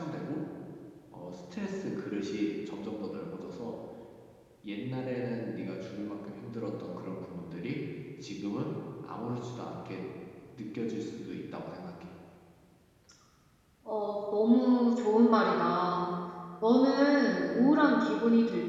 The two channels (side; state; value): both; identical; correlation 1.00